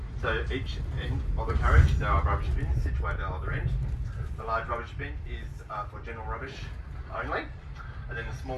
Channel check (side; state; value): both; identical; correlation 1.00